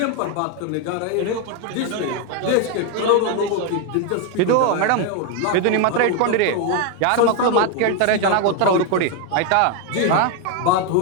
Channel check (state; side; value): different; both; correlation 0.01